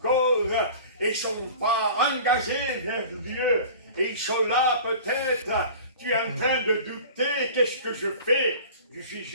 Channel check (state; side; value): inverted; both; correlation -0.41